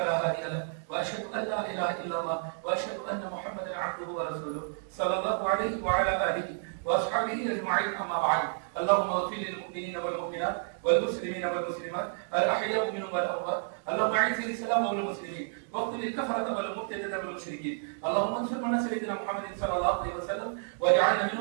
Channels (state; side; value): silent; left; digital silence